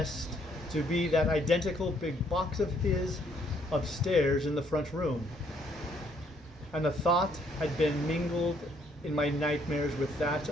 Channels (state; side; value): normal; both; correlation 0.68